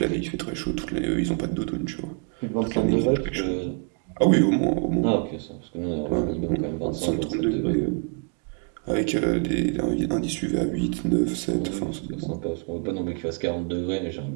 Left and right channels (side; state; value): left; quieter; 37.9 dB